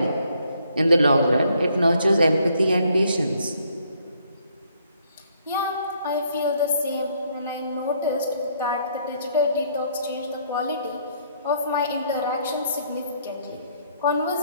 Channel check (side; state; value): both; inverted; correlation -0.67